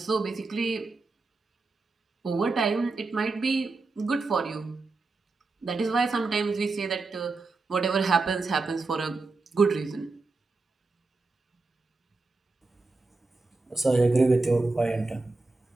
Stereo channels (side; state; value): left; quieter; 3.6 dB